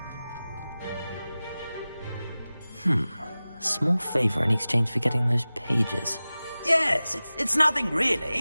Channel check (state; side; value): inverted; both; correlation -0.97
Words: A small favor in exchange for getting those pages. Yes, it's nothing